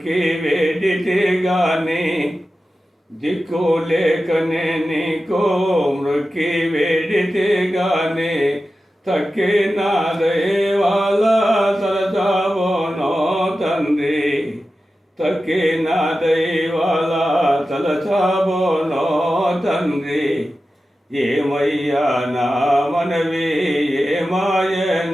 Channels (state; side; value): normal; both; correlation 0.93